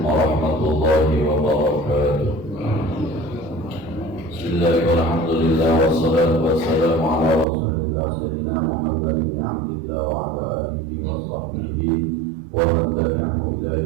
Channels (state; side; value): drops out; left; at 7.5 s